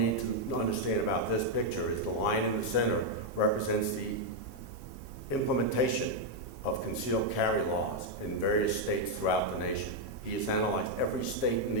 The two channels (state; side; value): normal; both; correlation -0.01